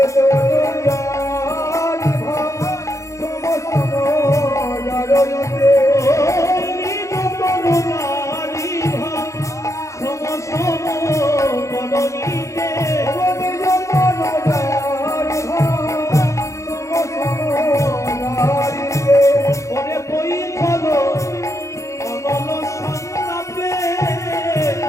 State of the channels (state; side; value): late; right; 0.15 ms